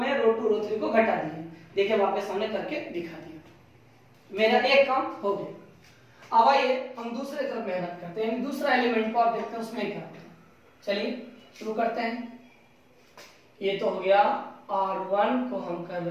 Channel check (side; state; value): both; identical; correlation 1.00